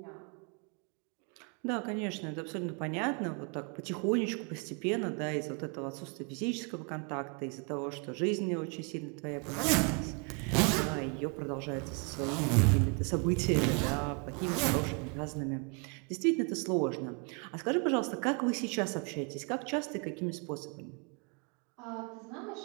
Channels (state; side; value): quieter; left; 34.2 dB